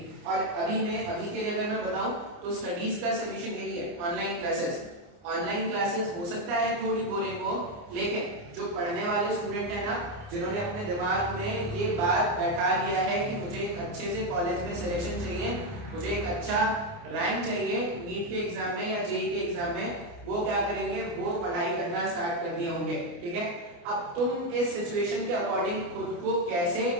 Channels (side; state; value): left; late; 29 ms